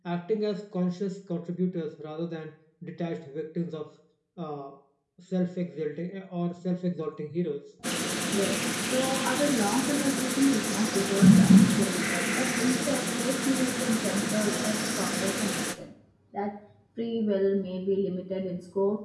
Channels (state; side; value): identical; both; correlation 1.00